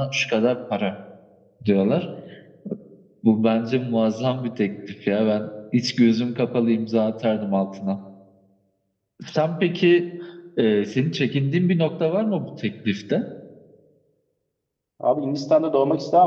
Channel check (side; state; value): both; identical; correlation 1.00